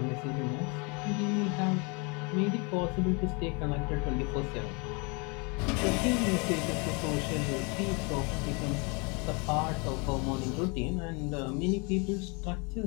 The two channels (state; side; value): quieter; right; 31.4 dB